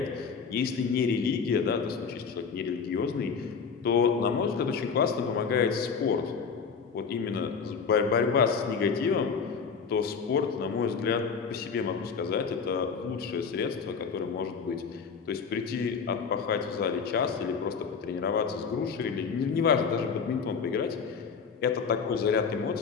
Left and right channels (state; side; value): quieter; right; 5.8 dB